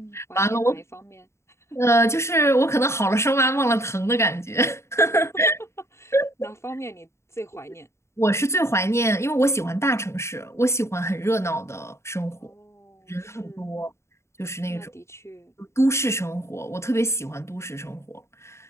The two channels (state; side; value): late; right; 0.13 ms